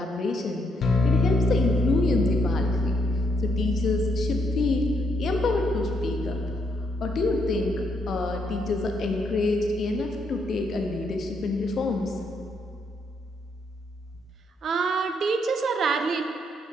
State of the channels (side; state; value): both; normal; correlation 0.75